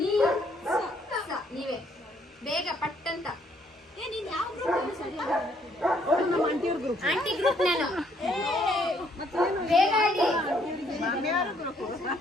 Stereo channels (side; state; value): both; normal; correlation 0.68